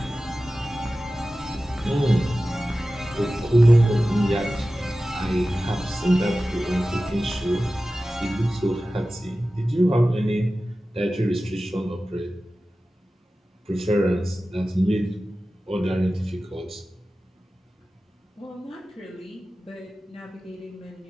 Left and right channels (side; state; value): both; normal; correlation 0.95